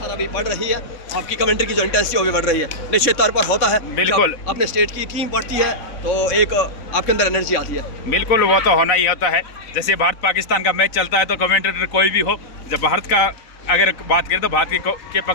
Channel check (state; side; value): late; right; 3.5 ms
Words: अभी बढ़ रही है। आपकी कमेंट्री की जो इंटेंसिटी भी बढ़ रही है, निश्चित तौर पर होता है। बिल्कुल अपने स्टेट की टीम बढ़ती है तो एक आपके अंदर एनर्जी आती है। बिल्कुल वो तो होना ही होता है। जैसे भारत पाकिस्तान का मैच चलता है तो कमेंटेटर कोई भी हो, जब भारत का अगर बात करें तो भारत के